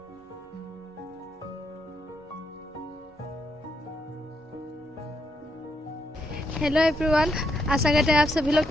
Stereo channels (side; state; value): both; normal; correlation 0.78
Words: हेलो एवरीवन, आशा करते हैं आप सभी लोग